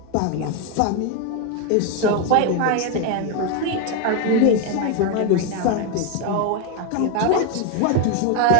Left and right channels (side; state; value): both; different; correlation 0.01